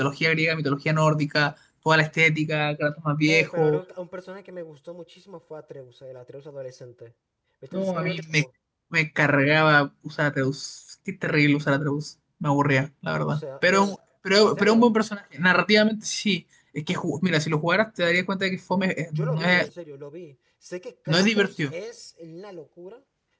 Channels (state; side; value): identical; both; correlation 1.00